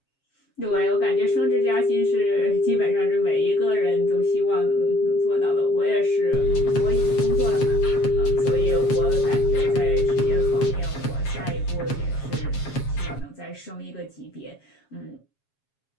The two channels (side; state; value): right; late; 7.3 ms